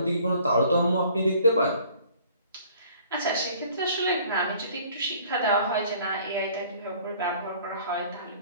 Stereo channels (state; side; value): inverted; both; correlation -0.55